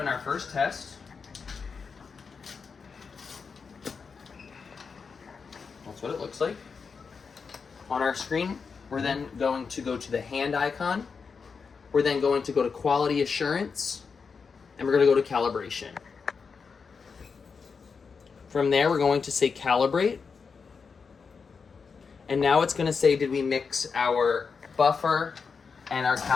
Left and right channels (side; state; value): right; quieter; 5.4 dB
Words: our first test. That's what it looks like. On our screen, we're then going to go to the hand icon. We're then going to go to quality assurance, and we're going to go to calibration. From there, we're going to say calibrate. And now it's going to say, did we mix our buffer and our